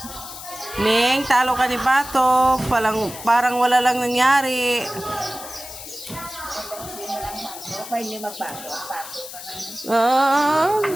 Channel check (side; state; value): left; noise; hiss, 12 dB below the sound